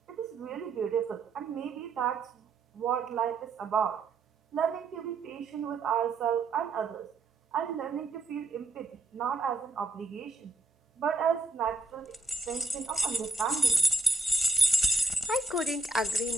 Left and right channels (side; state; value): left; quieter; 3.3 dB